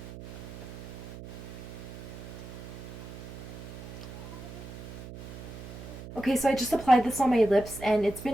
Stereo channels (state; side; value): noise; right; hum, 11 dB below the sound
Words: Okay, so I just applied this on my lips and it's